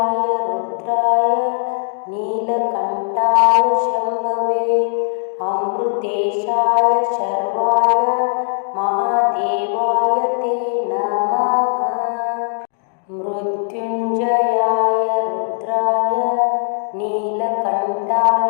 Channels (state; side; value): silent; right; digital silence